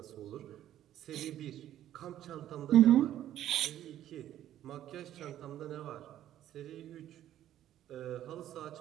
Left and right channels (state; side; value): quieter; left; 12.1 dB